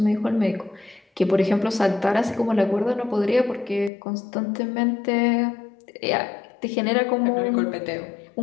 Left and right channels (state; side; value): drops out; right; at 3.9 s